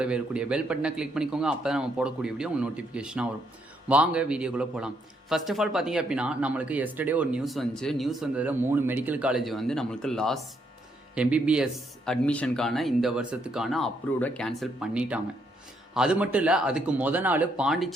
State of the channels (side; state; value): both; normal; correlation 0.74